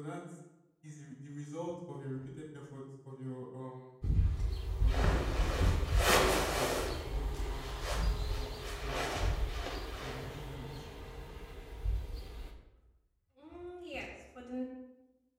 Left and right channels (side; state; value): both; identical; correlation 1.00